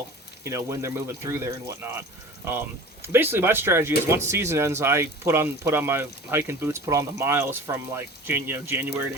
you know, when they're moving through there and whatnot. Basically, my strategy is once season ends, I put on my hiking boots, put on the miles from like January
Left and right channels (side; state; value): both; normal; correlation 0.40